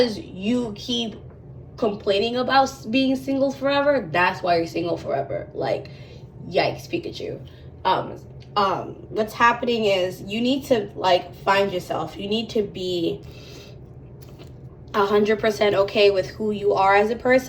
you keep complaining about being single forever, that's why you're single forever. Like, yikes, Pikachu. What's happening is you need to like find yourself. You need to be 100% okay with who you are as a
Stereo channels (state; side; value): identical; both; correlation 1.00